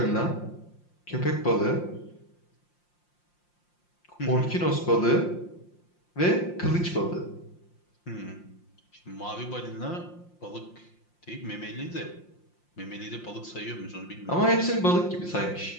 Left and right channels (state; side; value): late; right; 5.7 ms